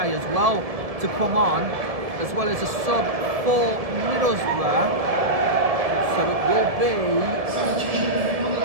as well to come on, as well as a sub for Middlesbrough. So it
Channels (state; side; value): late; left; 1.7 ms